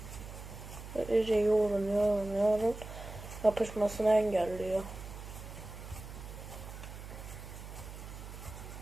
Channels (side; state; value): right; noise; hum, 12 dB below the sound